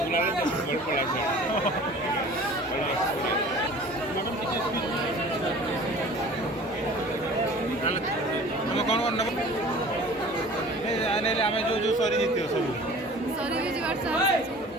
कौन कौन नब आम जो जो सरी जीत सब सरी भी जीवार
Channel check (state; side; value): normal; both; correlation 0.45